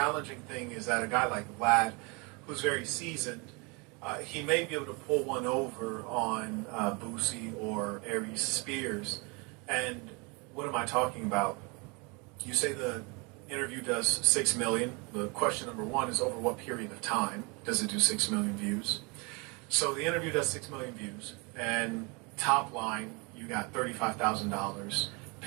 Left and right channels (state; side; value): quieter; left; 29.9 dB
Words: thing is that a guy like Vlad, who's very seasoned, he may be able to pull one over on Boosie or Aries Spears. And what am I talking about? You say the interview does 6 million. The question number one is, over what period of time does it do 6 million views? So the interview does 6 million views, and top line, you got $35,000